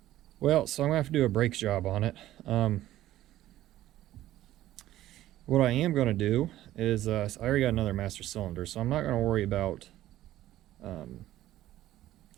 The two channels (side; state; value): left; quieter; 14.2 dB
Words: Well, so I'm gonna have to do a brake job on it. What I am gonna do is, I already got another master cylinder, so I'm not gonna worry about